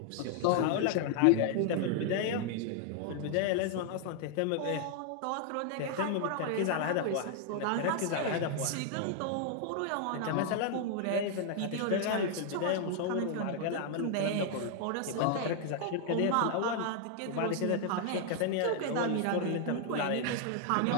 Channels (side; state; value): both; different; correlation 0.00